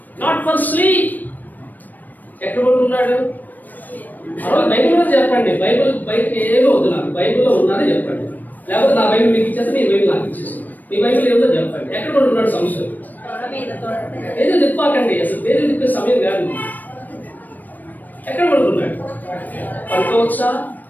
not for sleep. ఎక్కడ కొనుక్కున్నాడు? బైబిల్లో చెప్పండి. బైబిల్ బయటకి ఏమో వద్దు, నాకు బైబిల్లో ఉన్నది చెప్పండి. లేకపోతే నా బైబిల్ మీకు ఇచ్చేస్తే మీ బైబిల్ నాకు ఇచ్చేసి, మీ బైబిల్ ఏదో చెప్పండి. ఎక్కడ కొనుక్కున్నాడు? సంశయం ఏదో తిప్పాకండి, అసలు పేరు తిప్పే సమయం కాదు. ఎక్కడ కొనుక్కున్నాడు? పడుకోవచ్చా?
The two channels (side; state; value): right; late; 0.086 ms